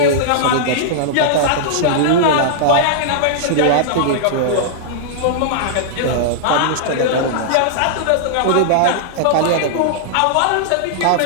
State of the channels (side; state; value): both; different; correlation -0.01